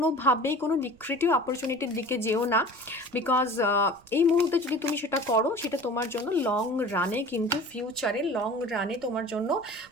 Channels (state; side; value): noise; right; rumble, 28 dB below the sound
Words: কোনো লিক্রেটিভ অপরচুনিটির দিকে যেও না, বিকজ এই মুহূর্তে যদি তুমি সেটা করো সেটা তোমার জন্য লং রানে কিন্তু ফিউচারে লং রানে তোমার জন্য